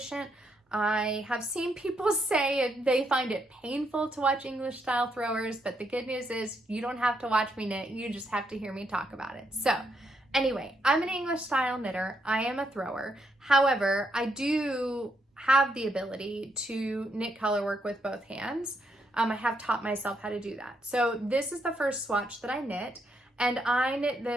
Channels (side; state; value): both; normal; correlation 0.77